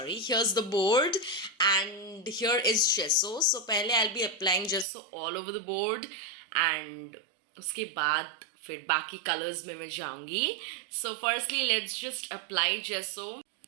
here's the board, and here is gesso. So, पहले I'll be applying gesso all over the board, and उसके बाद फिर बाकी colors में मैं जाऊंगी. So, firstly, let's just apply gesso.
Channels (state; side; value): drops out; left; at 4.9 s